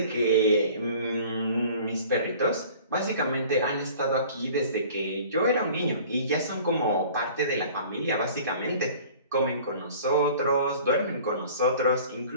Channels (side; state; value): both; inverted; correlation -0.47